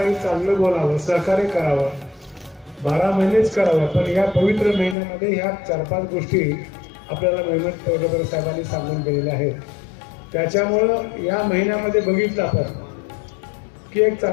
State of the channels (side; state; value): right; drops out; at 5.0 s